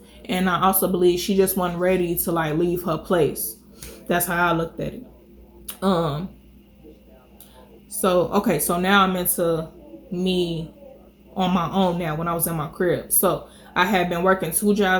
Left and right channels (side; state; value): both; identical; correlation 1.00